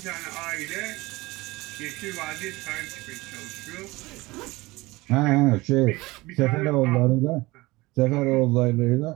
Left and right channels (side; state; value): left; quieter; 21.1 dB